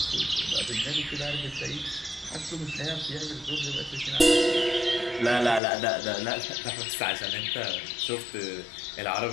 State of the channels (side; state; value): right; drops out; at 5.6 s